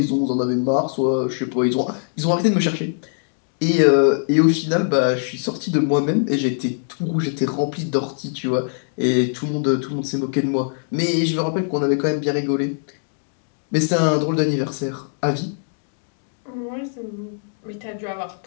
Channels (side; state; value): right; silent; digital silence